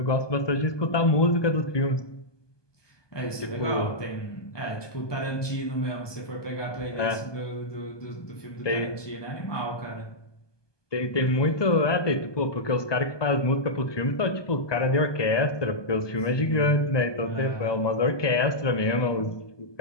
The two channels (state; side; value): late; right; 1.2 ms